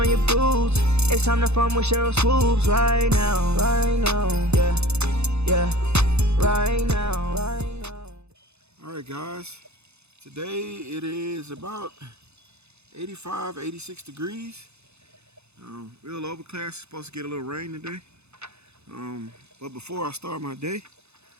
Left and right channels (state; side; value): late; left; 0.80 ms